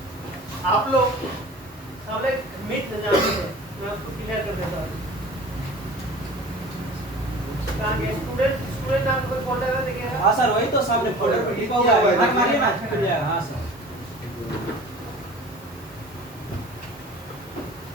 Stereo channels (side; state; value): both; normal; correlation 0.41